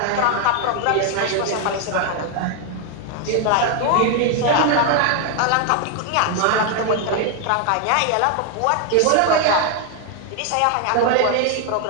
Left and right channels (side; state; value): both; different; correlation 0.00